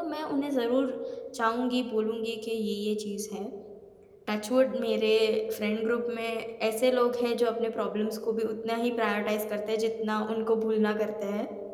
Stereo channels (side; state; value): both; identical; correlation 1.00